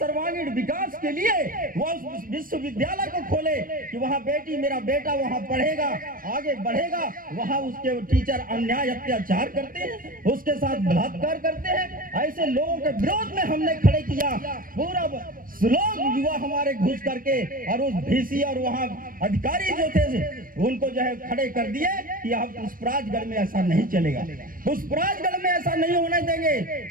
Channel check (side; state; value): left; late; 0.41 ms